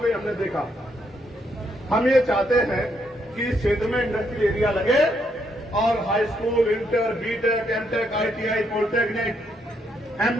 गए, हमने देखा। हम ये चाहते हैं कि इस क्षेत्र में इंडस्ट्रियल एरिया लगे, और high school, inter, BTech, MTech, ITI, polytechnic,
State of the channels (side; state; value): both; normal; correlation 0.75